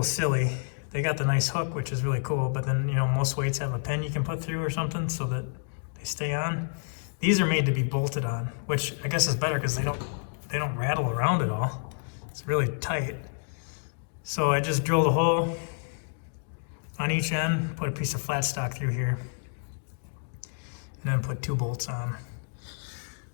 silly. They got the nice hook, which is really cool, but then, you know, most weights have a pin you can put through or something so that they stay on. These are made to be bolted on, which I guess is better because they don't rattle around at all. It's really tight. So I just drilled a hole on each end, put a piece of flat stock through here, and then put 2 bolts on.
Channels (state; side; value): silent; right; digital silence